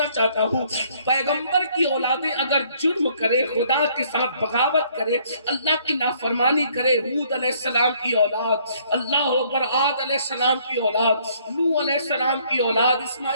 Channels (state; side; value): inverted; both; correlation -0.63